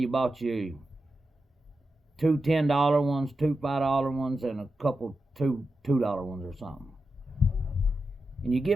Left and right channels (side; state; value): both; normal; correlation 0.89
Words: bought you two $10 ones, two $5 ones, and a couple $2 ones or something. And you